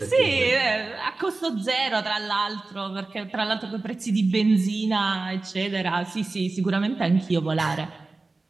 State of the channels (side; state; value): left; quieter; 3.5 dB